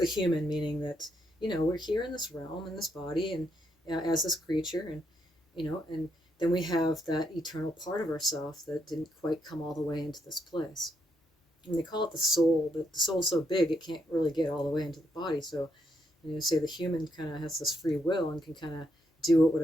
human, meaning that, we're here in this realm, in this body, and as this creature, and and then we have that eternal part of ourself that didn't quite come all the way into this place. And they call it the soul, but the soul's so big it can't really get all the way into the body. So, say the human kind of has this free will and can kind of do what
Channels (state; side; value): normal; both; correlation 0.78